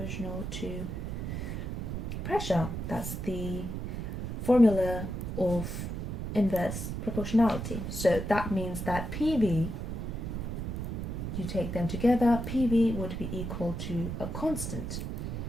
to pressure. That's the formula of inverse proportionality. So that means that PV, you take them together, PV would be equal to a constant,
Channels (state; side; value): noise; right; rumble, 4 dB below the sound